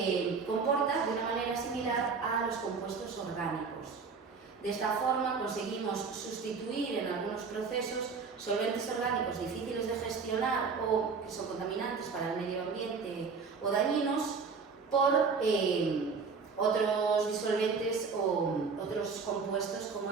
comporta de una manera similar a los compuestos orgánicos. De esta forma conseguimos sustituir en algunos procesos solventes orgánicos difíciles de gestionar o que son contaminantes para el medio ambiente o dañinos por otros disolventes o otros compuestos como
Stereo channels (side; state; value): left; quieter; 5.1 dB